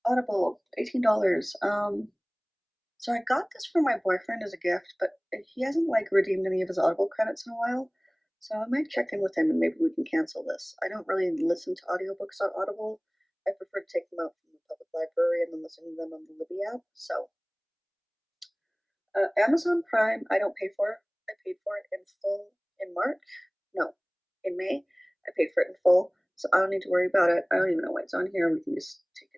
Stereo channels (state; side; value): identical; both; correlation 1.00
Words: Audible, $18. So I got this for my boyfriend as a gift, but he hasn't like redeemed any of his Audible credits in a while. So I might check in with him and maybe we can cancel this. I don't really listen to audiobooks on Audible. I prefer to take them out from the public library and then listen to them on the Libby app. So Amazon Prime, I don't pay for. I paid for it in full in March. No, in May. I paid for it in full, so I don't need to worry about it. I don't even know why it's on here. We can just take